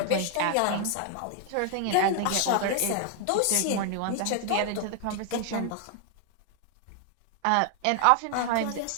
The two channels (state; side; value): different; both; correlation 0.00